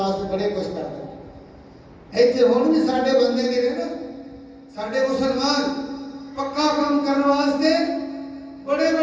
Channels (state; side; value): identical; both; correlation 1.00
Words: سے بڑے کچھ کرتا ہے۔ ایتھے ہون بھی ساڑھے بندے دے نا، ساڑھے مسلمان پکا کام کرنے واسطے بڑے